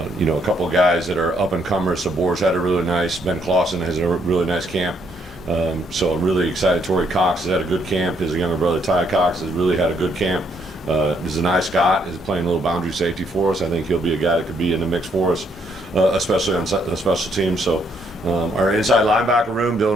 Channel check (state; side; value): normal; both; correlation 0.71